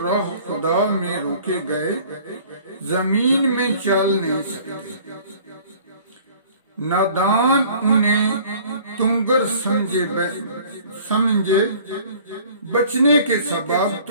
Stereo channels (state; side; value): inverted; both; correlation -0.51